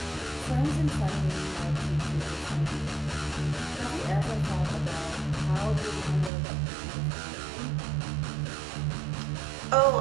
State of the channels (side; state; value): left; drops out; at 6.3 s